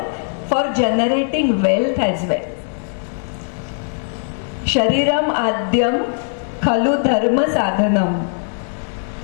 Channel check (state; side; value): silent; right; digital silence